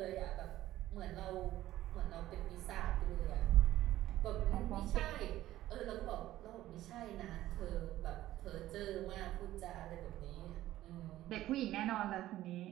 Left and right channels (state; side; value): quieter; left; 14.5 dB